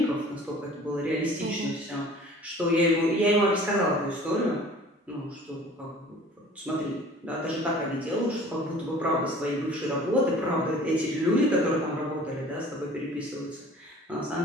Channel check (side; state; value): both; normal; correlation 0.47